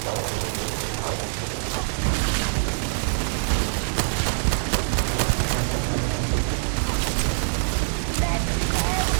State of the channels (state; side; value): silent; left; 62 dB below the other